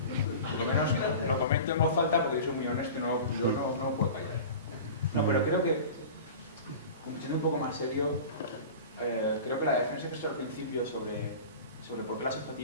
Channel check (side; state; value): both; inverted; correlation -0.35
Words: Por lo menos lo comento en voz alta porque yo soy muy honesto, yo no puedo callar. No, pero creo que, siendo un poco más serio, creo que la defensa que he hecho al principio sobre por qué la